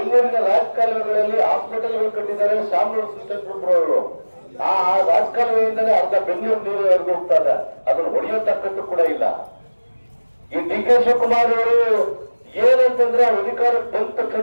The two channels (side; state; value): both; inverted; correlation -1.00